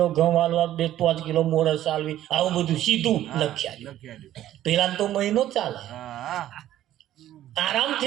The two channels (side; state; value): left; quieter; 12.9 dB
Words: ઘઉં હાલવા, 2-5 કિલો મોરસ હાલવી, આવું બધું સીધું લખ્યાલી. પેલા તો મહિનો ચાલે,